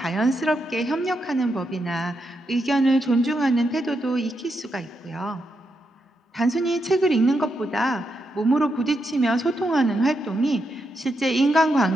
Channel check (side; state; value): both; normal; correlation 0.83